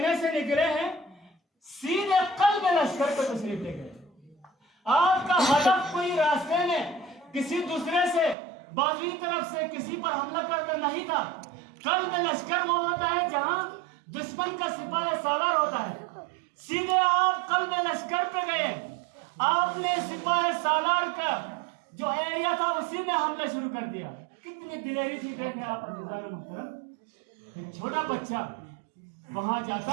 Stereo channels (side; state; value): left; drops out; at 8.3 s